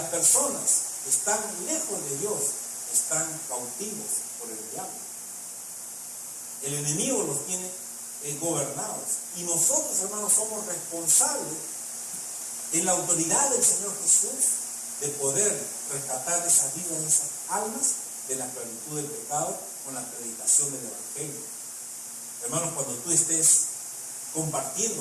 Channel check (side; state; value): both; identical; correlation 1.00